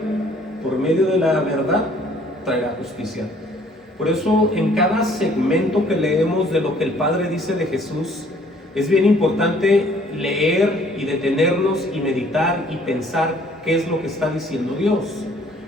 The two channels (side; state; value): both; normal; correlation 0.59